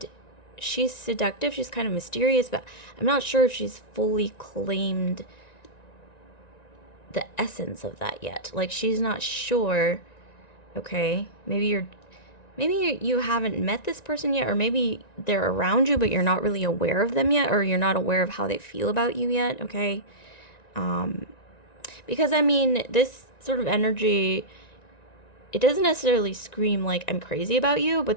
she's seductive. She's kind of mysterious, but I'm not sure if she's fully claimed the essence of that yet. Like, she's not sure. Okay, maybe you haven't met this person yet, or maybe they're around you but you're not really aware of them yet, or you're not aware of how they feel about you yet. Okay, because I mean, this sort of energy, it doesn't necessarily scream like I'm crazy about you,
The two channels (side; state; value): right; late; 1.9 ms